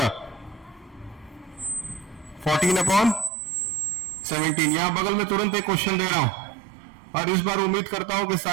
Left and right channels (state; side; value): drops out; left; at 3.3 s